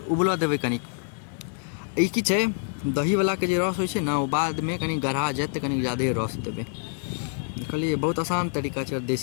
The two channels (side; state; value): right; silent; 56 dB below the other